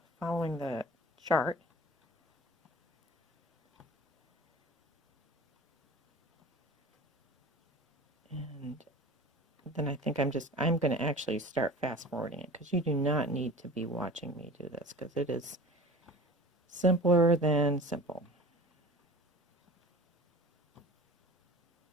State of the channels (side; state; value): both; normal; correlation 0.39